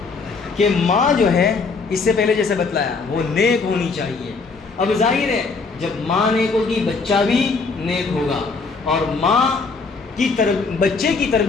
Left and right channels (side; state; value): right; quieter; 4.4 dB